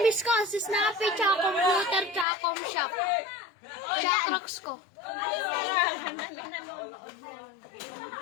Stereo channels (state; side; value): drops out; right; at 2.2 s